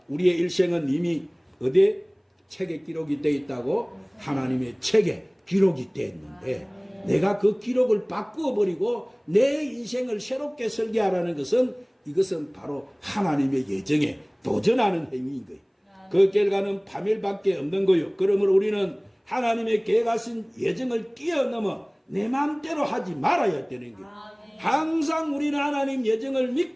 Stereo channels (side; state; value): both; identical; correlation 1.00